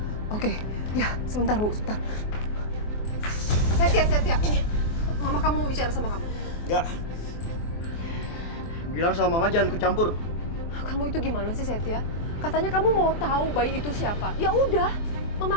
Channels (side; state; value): right; late; 24 ms